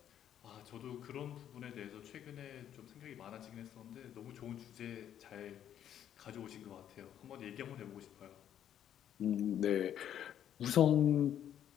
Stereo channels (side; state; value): right; quieter; 10.2 dB